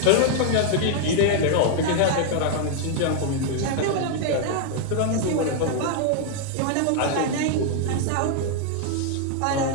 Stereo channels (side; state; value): both; different; correlation 0.00